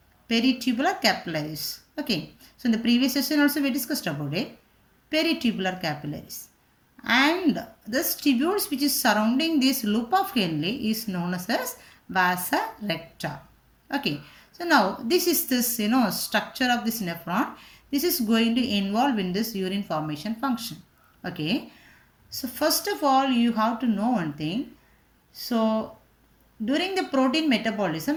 Peritubular capillaries. Okay, so in the previous session also we discussed about it. Peritubular capillaries. And this tubules which is surrounding this loop of Henle is known as vasa recta. Okay, so now this is this structure of this nephron. This is going to involve in this urine formation function. Okay, so first of all you have to know one thing. So during the protein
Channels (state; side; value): identical; both; correlation 1.00